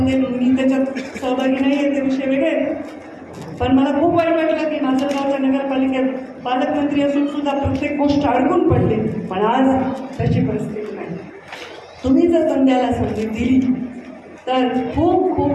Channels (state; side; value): identical; both; correlation 1.00